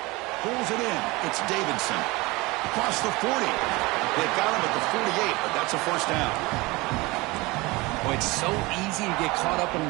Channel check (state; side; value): quieter; left; 23.0 dB